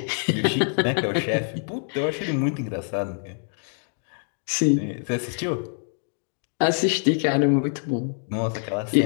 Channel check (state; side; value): silent; right; 58 dB below the other